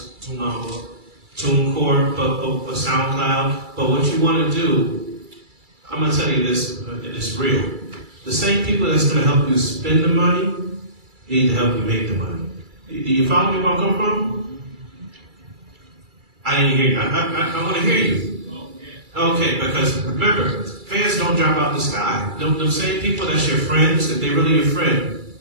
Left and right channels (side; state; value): left; late; 2.3 ms